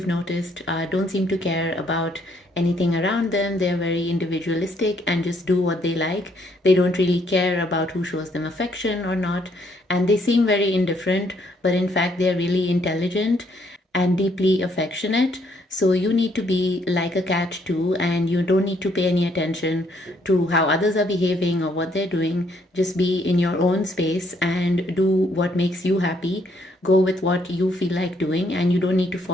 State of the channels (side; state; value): both; normal; correlation 0.69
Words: noticed, don't seem to care about anything around them. They're very individualistic and just do what they like. They don't really care about who shows them affection or not. And they seem very indifferent, but in fact, they're really intelligent and deeply affectionate. So you need to be like a cat too, and you don't need to pay any attention to how others are behaving or what they're doing. Just be in your own space and do what makes you happy. Go with what you feel like doing, and you don't need to